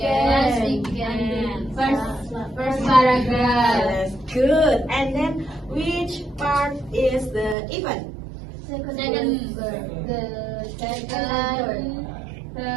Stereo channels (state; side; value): drops out; left; at 7.6 s